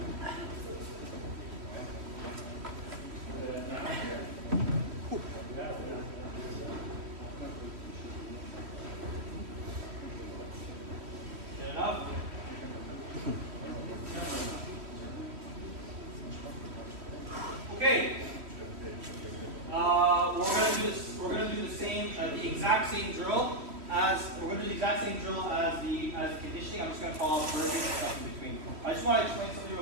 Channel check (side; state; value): left; late; 3.1 ms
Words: enough? Okay. We're gonna do the same, the exact same drill as we're gonna do the exact same drill as the conditioning. I'm just gonna follow burpees and stuff in between. I just want to explain something